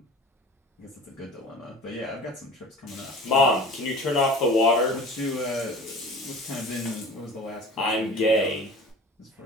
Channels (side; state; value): both; normal; correlation 0.40